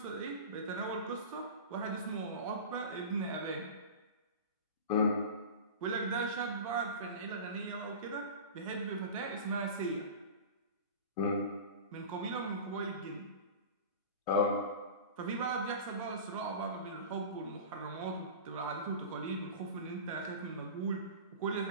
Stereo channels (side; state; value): both; inverted; correlation -0.32